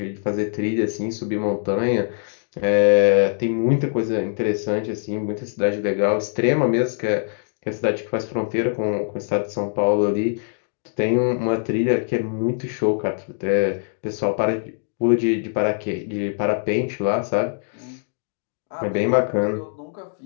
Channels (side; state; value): right; silent; digital silence